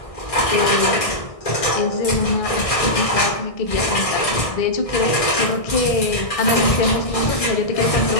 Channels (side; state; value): right; late; 1.6 ms